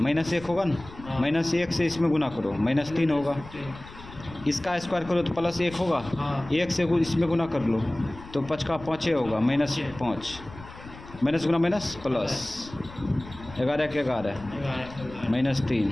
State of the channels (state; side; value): noise; left; rumble, 17 dB below the sound